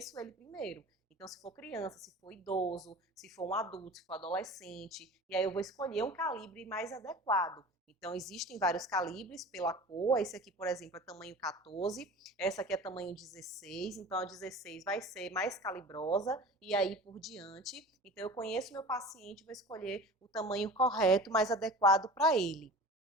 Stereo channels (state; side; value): normal; both; correlation 0.38